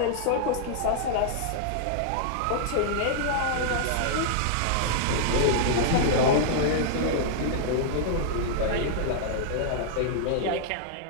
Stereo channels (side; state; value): both; different; correlation -0.01